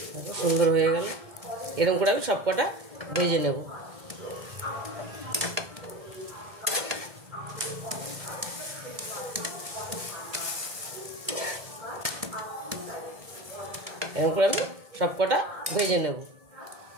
সুন্দর হয়ে গেল। এরকম করে আমি সবকটা ভেজে নেব। এরকম করে আমি সবকটা ভেজে নেব।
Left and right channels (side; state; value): left; late; 1.7 ms